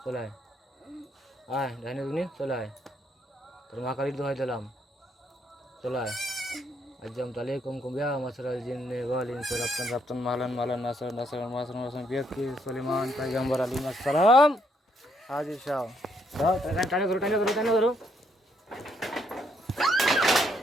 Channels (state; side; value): normal; both; correlation 0.73